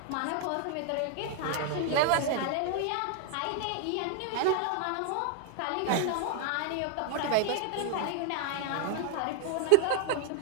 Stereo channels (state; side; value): different; both; correlation 0.00